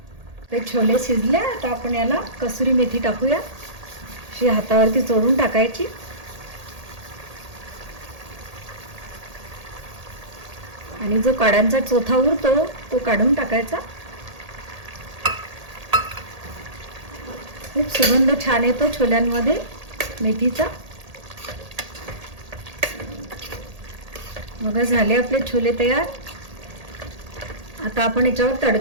ते छोले शिजले. आता आपण याला कसुरी मेथी टाकूया. अशी हातावरती चोळून टाकायची. आणि जो काड्यांचा चोथा उरतो तो काढून टाकायचा. खूप सुगंध छान येतो छोल्यांमध्ये मेथीचा. बघा झाले आपले छोले तयार. आता आपण याच्यावर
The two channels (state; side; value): late; left; 1.8 ms